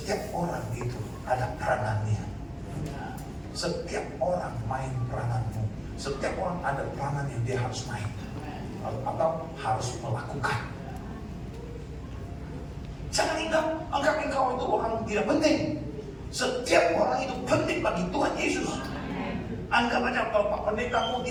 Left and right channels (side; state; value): both; identical; correlation 1.00